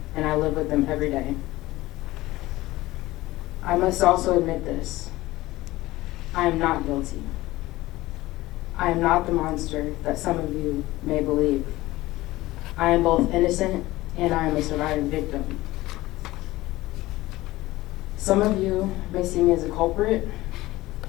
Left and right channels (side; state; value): right; quieter; 18.0 dB